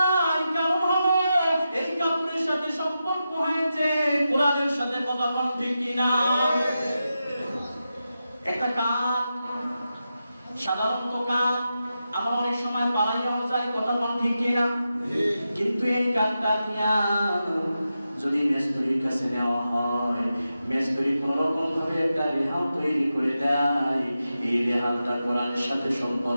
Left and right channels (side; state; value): both; inverted; correlation -0.90